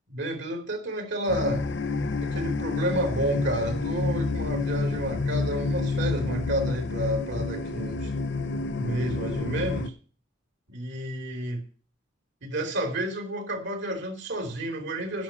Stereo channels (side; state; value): both; normal; correlation 0.41